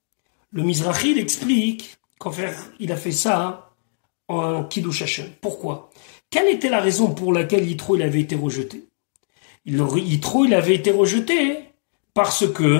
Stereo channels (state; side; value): silent; right; 65 dB below the other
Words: Le Mizrahi explique qu'en fait il a fait ça en Kiddush Hashem. Pourquoi? Quelle était la raison pour laquelle Yitro il avait été rejeté? Yitro il avait été rejeté parce